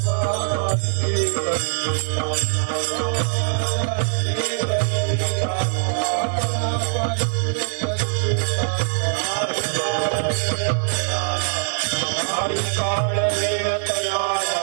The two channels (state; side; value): silent; left; digital silence